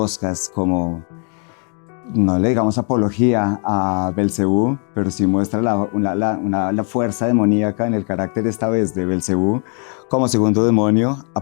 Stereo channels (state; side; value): quieter; right; 39.7 dB